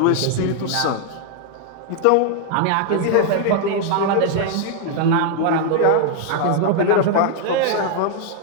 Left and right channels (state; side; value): different; both; correlation 0.00